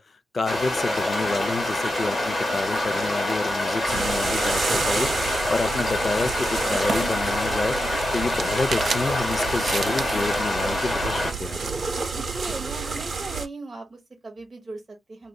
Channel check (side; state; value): both; normal; correlation 0.87